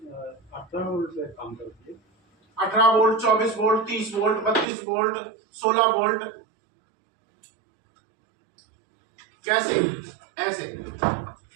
18 वोल्ट पे काम करती है। 18 volt, 24 volt, 30 volt, 32 volt, 16 volt. कैसे? ऐसे।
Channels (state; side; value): drops out; left; at 4.7 s